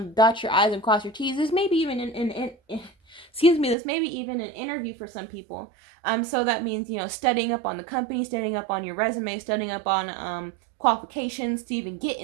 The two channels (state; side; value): drops out; left; at 3.8 s